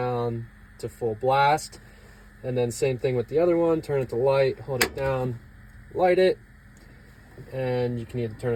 to full blast. And then same thing with the other one, turn it to light, hold it down, light it, and you can either turn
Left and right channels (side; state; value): both; identical; correlation 1.00